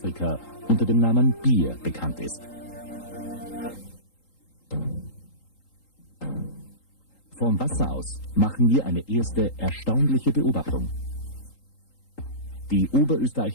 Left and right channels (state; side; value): late; right; 3.8 ms